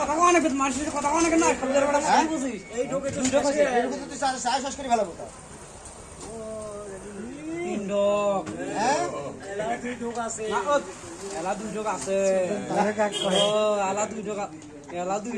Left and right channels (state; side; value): identical; both; correlation 1.00